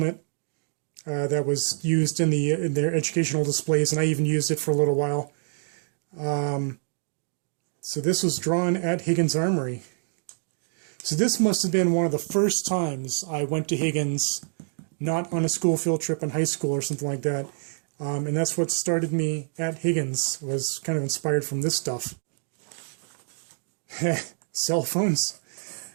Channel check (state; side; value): silent; left; digital silence